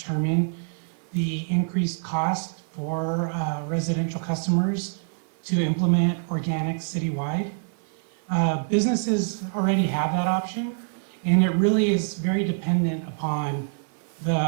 the increased cost for residential customers to implement organics citywide. Businesses already have that option, and it really is very dependent upon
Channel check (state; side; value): silent; left; 57 dB below the other